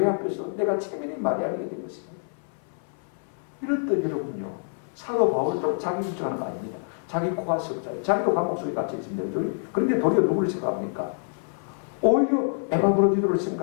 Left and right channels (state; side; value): silent; right; 61 dB below the other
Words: 앞에서 내가 책임이 많이 알게 된 것입니다. 이렇듯 여러분요, 사도 바울도 자기 주장하는 거 아닙니다. 자기 코가 석자예요. 자기도 감옥 속에 갇혀 있습니다. 그런데 도리어 누구를 생각합니까? 오히려 에바브로디도를